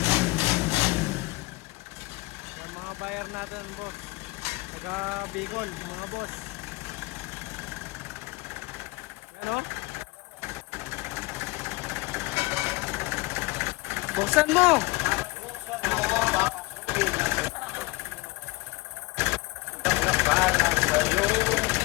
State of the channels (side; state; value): right; quieter; 23.2 dB